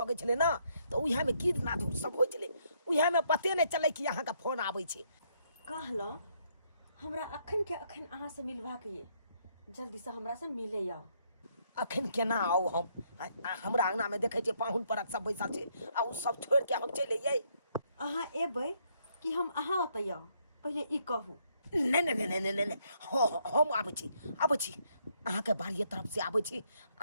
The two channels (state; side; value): inverted; both; correlation -0.72